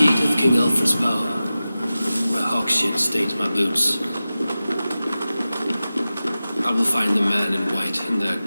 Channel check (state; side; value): inverted; both; correlation -0.95